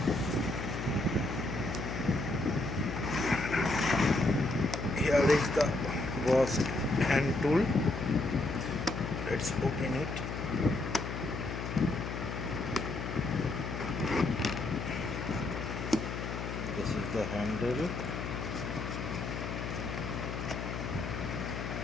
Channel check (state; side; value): noise; left; hum, 5 dB below the sound